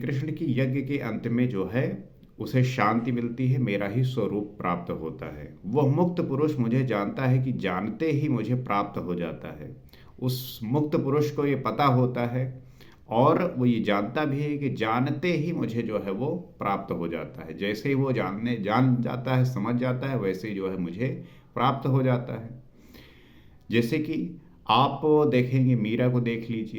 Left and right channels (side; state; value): both; identical; correlation 1.00